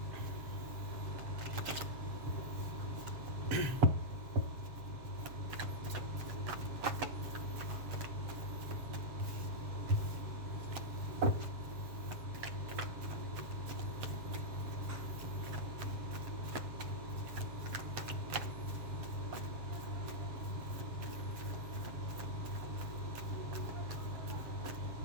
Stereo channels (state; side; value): late; left; 7.3 ms